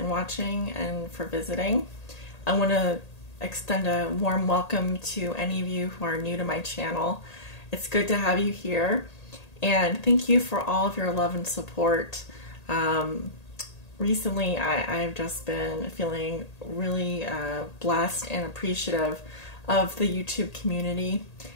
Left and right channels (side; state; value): right; late; 1.8 ms